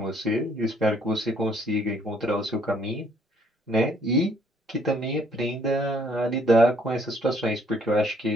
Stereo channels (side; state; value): both; normal; correlation 0.64